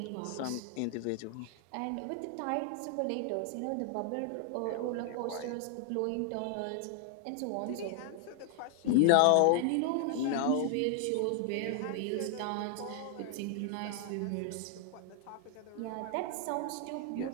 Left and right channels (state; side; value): different; both; correlation 0.00